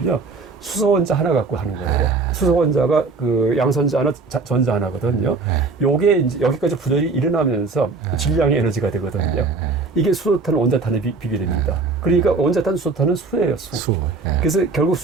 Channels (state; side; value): quieter; left; 4.1 dB